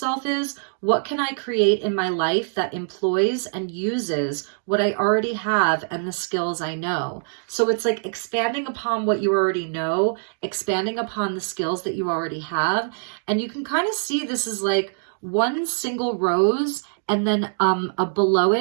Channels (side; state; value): left; silent; digital silence